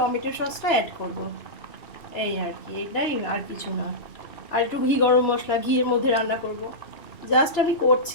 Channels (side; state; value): right; late; 3.0 ms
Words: সসটা অ্যাড করব, এই আর কি, এটাই আর কিছু না। আর একটু ঘি গরম মশলা ঘিয়ের মধ্যে রান্না করব। জাস্ট আমি